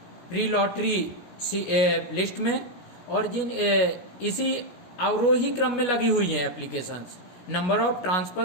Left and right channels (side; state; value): right; late; 16 ms